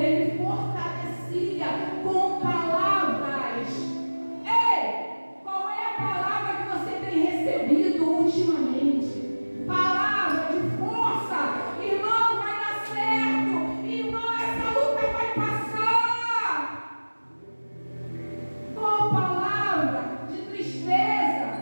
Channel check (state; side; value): inverted; both; correlation -1.00